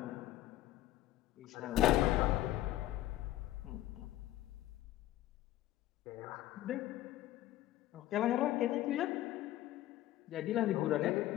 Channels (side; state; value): right; quieter; 14.5 dB